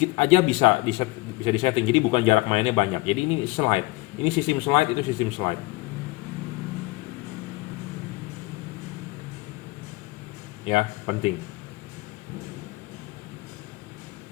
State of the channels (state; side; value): quieter; right; 22.0 dB